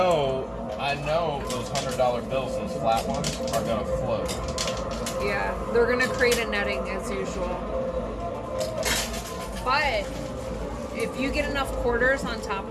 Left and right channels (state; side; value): identical; both; correlation 1.00